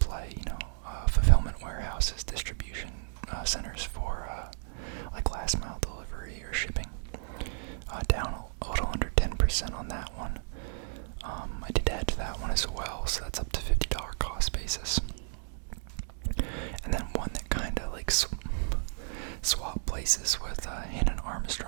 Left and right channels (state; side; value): silent; left; digital silence